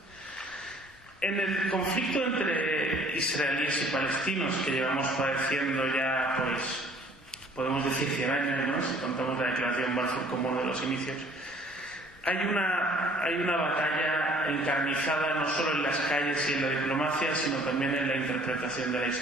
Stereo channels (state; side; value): normal; both; correlation 0.55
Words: En el conflicto entre israelíes y palestinos que llevamos padeciendo ya, pues, podemos decir 100 años, ¿no?, si contamos la declaración Balfour como uno de los inicios, hay una batalla encarnizada no solo en las calles y en la diplomacia, sino también en la interpretación de la